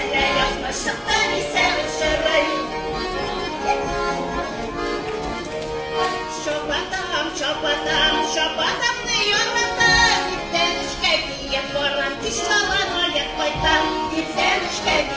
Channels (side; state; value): both; identical; correlation 1.00